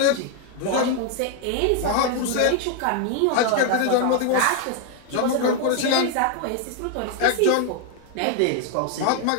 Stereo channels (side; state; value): both; different; correlation 0.00